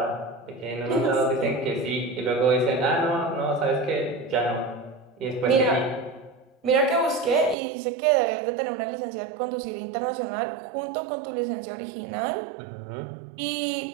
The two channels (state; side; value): drops out; left; at 7.6 s